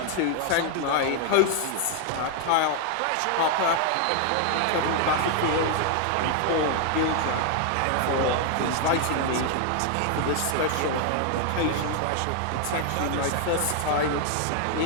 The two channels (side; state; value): both; different; correlation 0.00